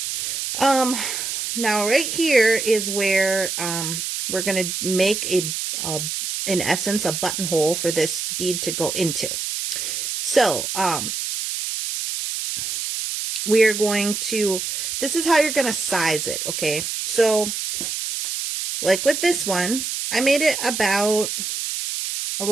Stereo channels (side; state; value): right; noise; hiss, 3 dB below the sound